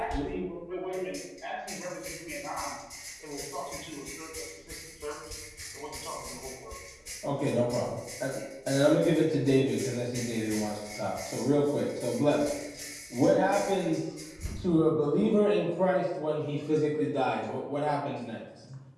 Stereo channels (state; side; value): identical; both; correlation 1.00